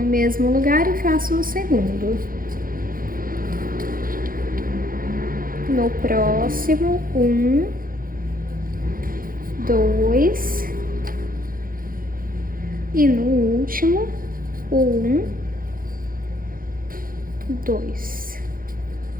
mesmo lugar e faço o segundo. no próximo, 1, 2, e no último, 1, 2.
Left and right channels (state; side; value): late; left; 0.41 ms